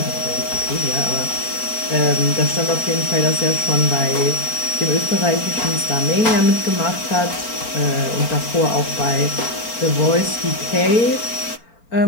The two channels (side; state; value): right; late; 4.4 ms